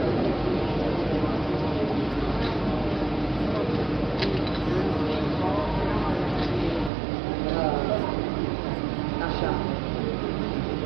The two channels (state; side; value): drops out; left; at 6.9 s